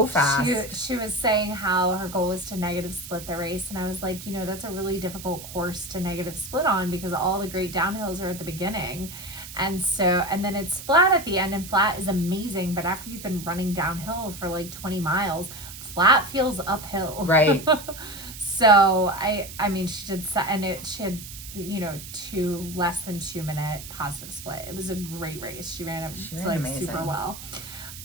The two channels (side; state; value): right; noise; hiss, 13 dB below the sound